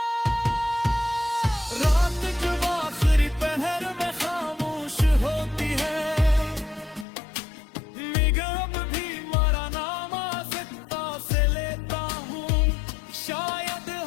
रात जब आखिरी पहर में खामोश होती है, निगम भी मरा नाम आज़िता से लेता हूँ। शायद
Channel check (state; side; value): drops out; right; at 7.1 s